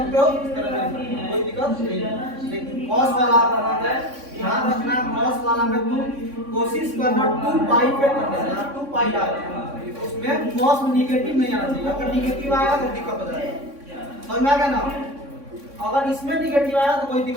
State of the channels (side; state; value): left; late; 3.6 ms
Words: हो, इस तरह भी, कोई दिक्कत नहीं। लेकिन कॉस वाला अगर आ जाए, ध्यान रखना कॉस वाला में तुम कोशिश करना 2π पे कर देना, 2π आ जाए उसमें कॉस में निगेटिव नहीं आना चाहिए। अगर निगेटिव आएगा तो दिक्कत हो जाएगा, समझ में आ गया ना? अगर इसमें निगेटिव आया तो कोई